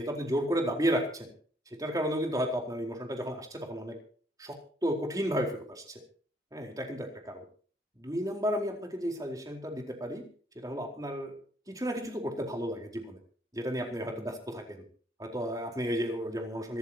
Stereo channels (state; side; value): normal; both; correlation 0.67